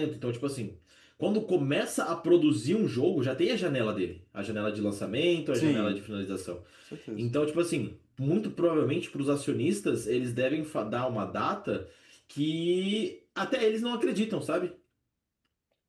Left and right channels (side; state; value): both; identical; correlation 1.00